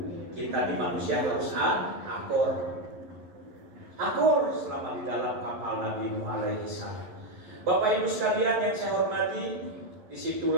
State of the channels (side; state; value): left; late; 11 ms